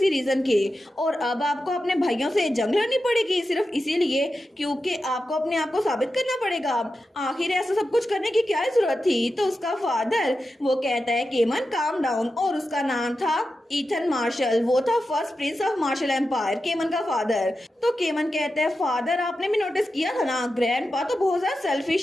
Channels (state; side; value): normal; both; correlation 0.91